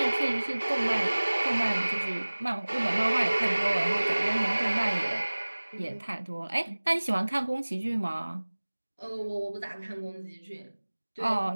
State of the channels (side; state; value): both; inverted; correlation -1.00